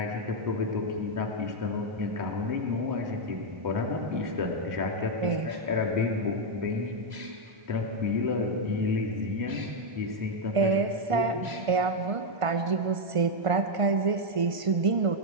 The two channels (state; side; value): late; left; 1.5 ms